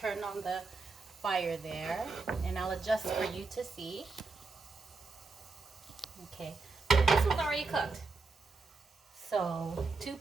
on the fire there, and I'll adjust for you to see. Okay, this one's already cooked. So 2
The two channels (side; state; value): left; quieter; 4.0 dB